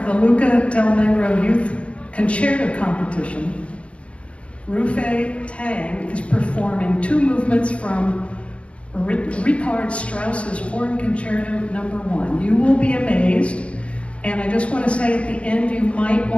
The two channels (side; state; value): right; late; 0.061 ms